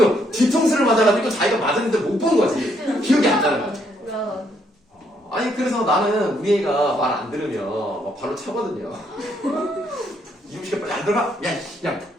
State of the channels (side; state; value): both; normal; correlation 0.72